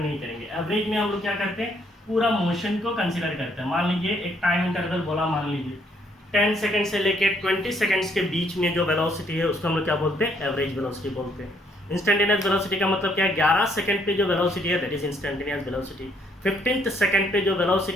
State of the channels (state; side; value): normal; both; correlation 0.68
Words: करेंगे। एवरेज में हम लोग क्या करते हैं, पूरा मोशन को कंसीडर करते हैं। मान लीजिए एक टाइम इंटरवल बोला, मान लीजिए 10 सेकंड से लेके 20 सेकंड्स के बीच में जो वेलोसिटी है उसको हम लोग क्या बोलते हैं, एवरेज वेलोसिटी बोलते हैं। इंस्टेंटेनियस वेलोसिटी का मतलब क्या है, 11 सेकंड पे जो वेलोसिटी है that is instantaneous velocity. 15th second पे जो